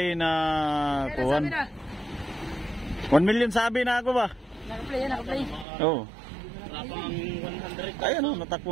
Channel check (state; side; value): drops out; left; at 5.7 s